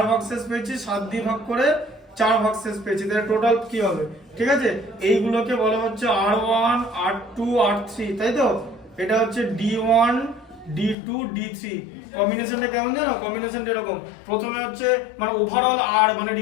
ভাগশেষ পেয়েছি, 7 দিয়ে ভাগ করে 4 ভাগশেষ পেয়েছি, তাহলে টোটাল কি হবে, ঠিক আছে। এইগুলোকে বলা হচ্ছে R1 R2 R3, তাই তো? এটা হচ্ছে D1 D2 D3। কম্বিনেশনটা কেমন জানো, কম্বিনেশনটা এরকম, প্রথমে হচ্ছে মানে ওভারঅল আর, মানে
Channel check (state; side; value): drops out; right; at 11.0 s